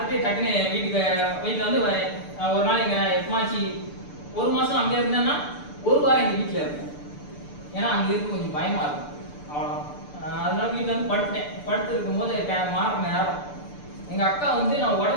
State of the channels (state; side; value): late; right; 6.8 ms